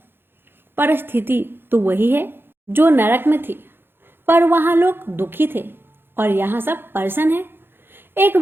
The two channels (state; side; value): late; left; 0.10 ms